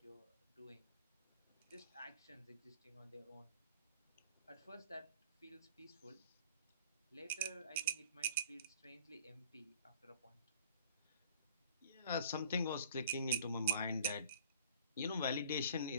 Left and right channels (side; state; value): both; inverted; correlation -0.50